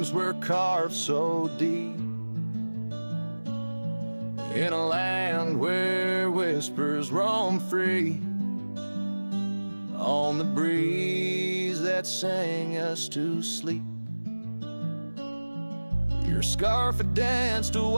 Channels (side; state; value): both; inverted; correlation -1.00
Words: were carved so deep, in a land where whispers roam free, on the breeze that sang us to sleep. Your scarf had danced a